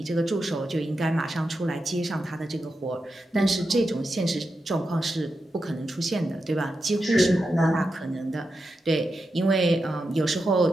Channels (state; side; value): normal; both; correlation 0.88